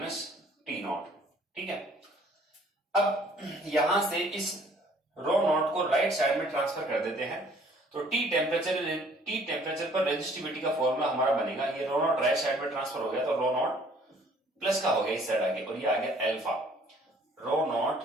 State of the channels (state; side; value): normal; both; correlation 0.58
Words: T naught. ठीक है, अब यहां से इस रो नॉट को राइट साइड में ट्रांसफर कर देते हैं तो टी टेम्परेचर पर रेजिस्टिविटी का फॉर्मूला हमारा बनेगा। ये रो नॉट राइट साइड में ट्रांसफर हो गया तो रो नॉट प्लस का हो गया इस साइड आगे, और ये आ गया alpha rho naught